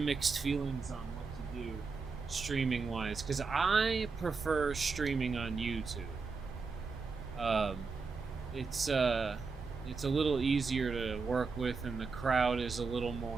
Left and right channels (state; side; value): quieter; left; 4.6 dB